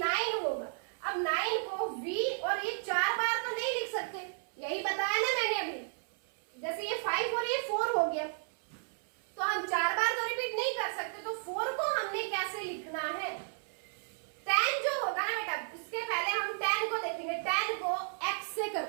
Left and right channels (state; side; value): silent; left; 55 dB below the other